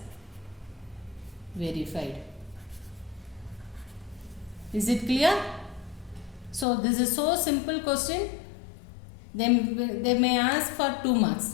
verified. Is it clear? So this is so simple question. They may ask for 2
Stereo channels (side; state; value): right; drops out; at 6.7 s